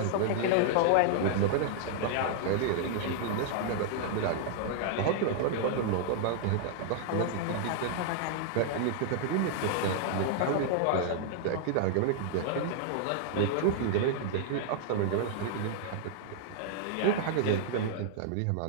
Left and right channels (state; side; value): different; both; correlation -0.01